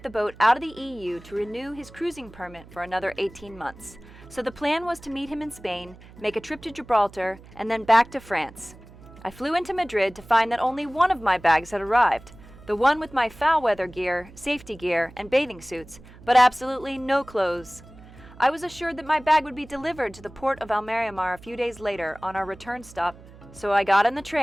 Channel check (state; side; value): noise; right; hum, 20 dB below the sound